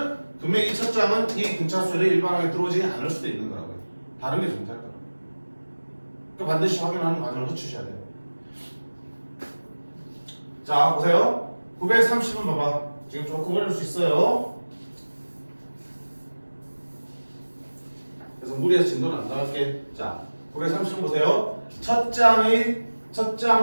분명히 이 첫 장은 이 등차 수열에 일반하게 들어오지 않을 수도 있는 거라고요. 다른 게 존재할 거라고. 그러니까 반드시 확인하는 과정을 거치셔야 돼요. 자, 보세요. 930은 봐봐. 지금 조금 어려울 수 있어요. 그래서 무리해서 진도는 안 나갈게. 자, 930은 보세요. 첫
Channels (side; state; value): both; inverted; correlation -1.00